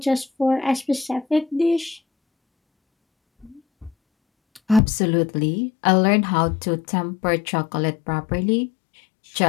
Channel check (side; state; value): right; drops out; at 4.8 s